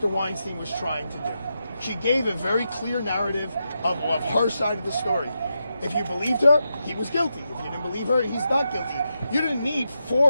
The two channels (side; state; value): both; inverted; correlation -0.86